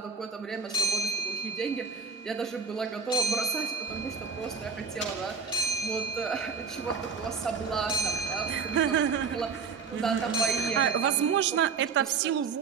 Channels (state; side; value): quieter; left; 5.4 dB